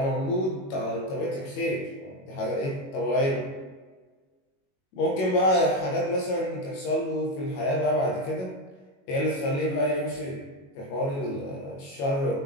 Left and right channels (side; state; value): right; late; 22 ms